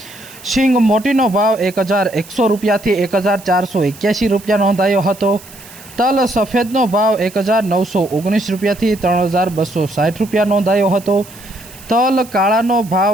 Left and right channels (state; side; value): noise; right; hiss, 20 dB below the sound